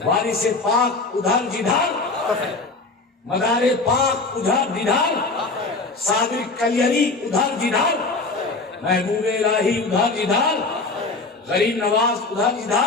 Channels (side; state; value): right; quieter; 3.6 dB